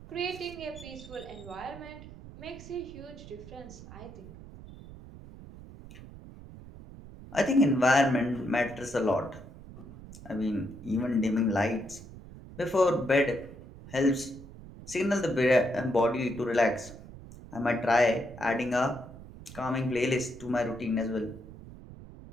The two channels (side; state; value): right; noise; rumble, 16 dB below the sound